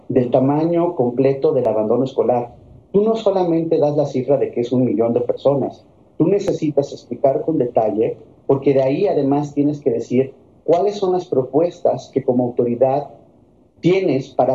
del tamaño completo del abandono escolar. Tú no solamente das la cifra de que es 1 millón de personas, tú necesitas explicar con detalle, porque de ahí además tienes que decir cuáles son las propuestas que como autoridad tienes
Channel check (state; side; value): identical; both; correlation 1.00